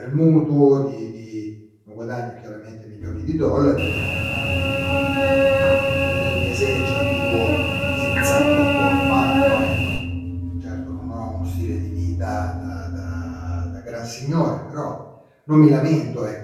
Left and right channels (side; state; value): both; identical; correlation 1.00